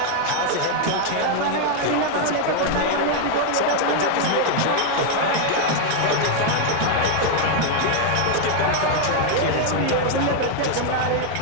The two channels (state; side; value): different; both; correlation 0.00